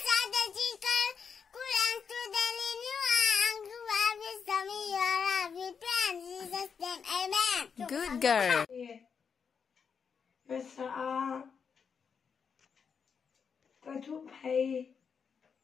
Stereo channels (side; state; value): right; quieter; 6.4 dB